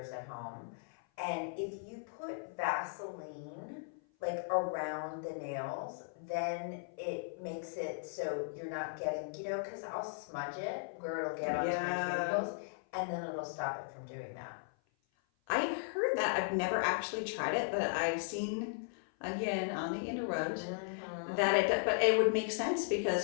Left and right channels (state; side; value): silent; right; 53 dB below the other